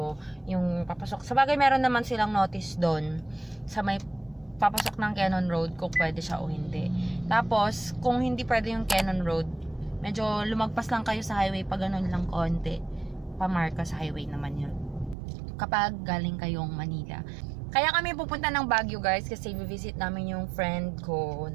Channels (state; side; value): drops out; left; at 15.2 s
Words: yung papasok. Sa bagay meron naman silang notice doon sa may papasok ng Jeon Road kung pwede siya o hindi. Tapos kung hindi pwede yung Jeon Road, medyo lumagpas lang kayo sa highway pag ganun lang konti. Pa-Marcos Highway naman yun. Kapag galing kayong Manila. Kaya kami pupunta ng Baguio guys kasi visit namin yung friend ko.